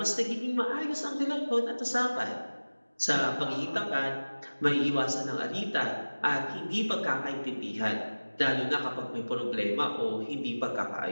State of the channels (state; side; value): inverted; both; correlation -1.00